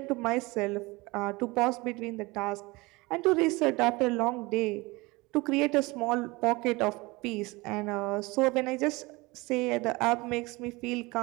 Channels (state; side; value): quieter; left; 23.3 dB